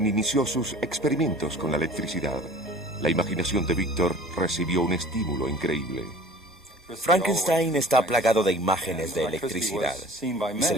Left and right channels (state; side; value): normal; both; correlation 0.45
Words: inició sus experimentos con la electricidad, la imaginación de Víctor recibió un estímulo increíble. Frankenstein está plagado de imágenes de electricidad y se